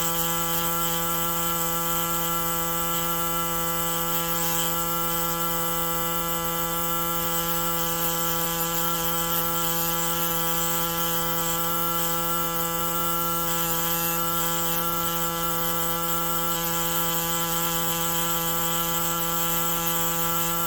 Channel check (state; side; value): identical; both; correlation 1.00